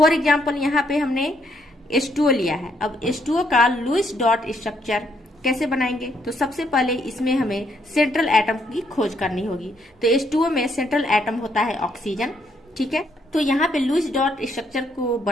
एग्जाम्पल, यहाँ पे हमने H2O लिया है। अब H2O का लुईस डॉट स्ट्रक्चर कैसे बनाएंगे, तो सबसे पहले इसमें हमें सेंट्रल एटम की खोज करनी होगी। तो H2O में सेंट्रल एटम होता है ऑक्सीजन। ठीक है, तो यहाँ पे लुईस डॉट स्ट्रक्चर को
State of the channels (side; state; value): both; normal; correlation 0.73